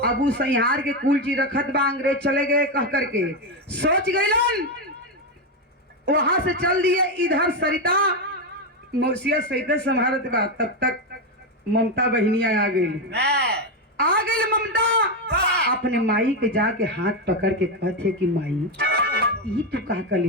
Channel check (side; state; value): both; normal; correlation 0.09